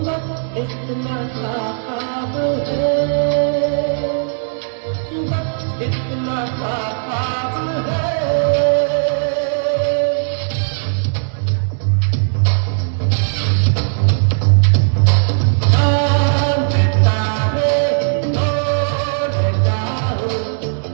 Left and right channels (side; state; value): left; silent; digital silence